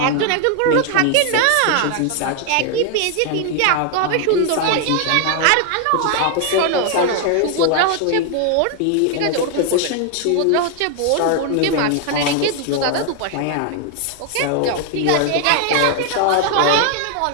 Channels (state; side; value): different; both; correlation 0.00